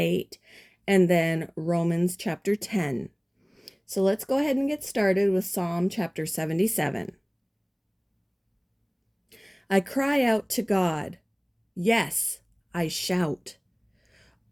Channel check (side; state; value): both; identical; correlation 1.00